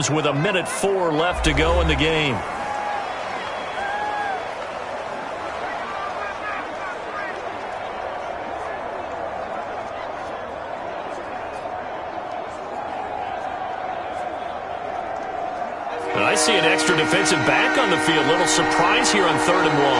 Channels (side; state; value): both; identical; correlation 1.00